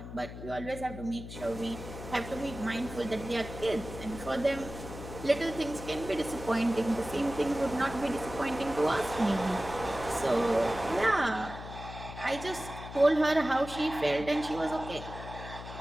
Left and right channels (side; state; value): left; noise; hum, 11 dB below the sound